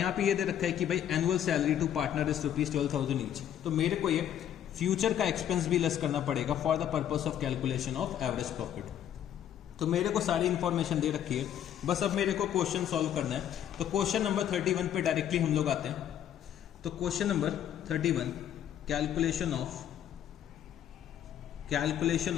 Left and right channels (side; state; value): right; quieter; 10.3 dB